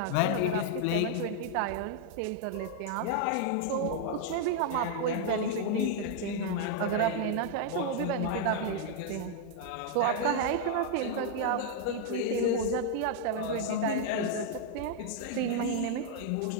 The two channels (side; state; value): both; different; correlation 0.00